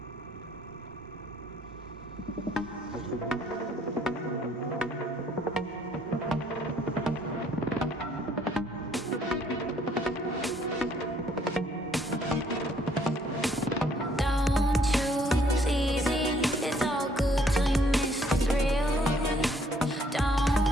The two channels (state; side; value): normal; both; correlation 0.64